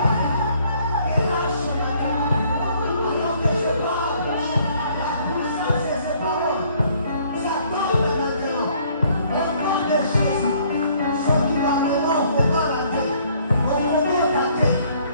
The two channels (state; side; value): inverted; both; correlation -0.62